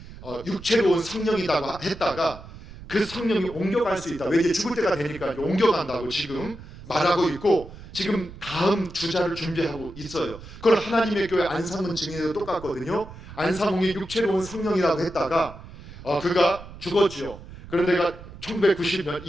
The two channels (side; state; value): right; noise; rumble, 16 dB below the sound